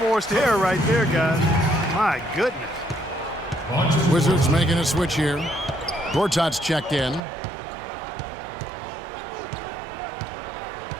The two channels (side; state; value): left; drops out; at 7.2 s